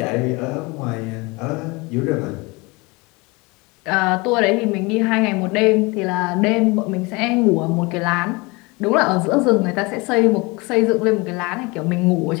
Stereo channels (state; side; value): quieter; right; 25.8 dB